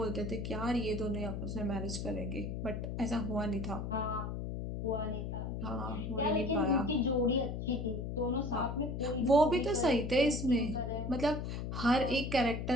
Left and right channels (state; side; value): noise; left; hum, 4 dB below the sound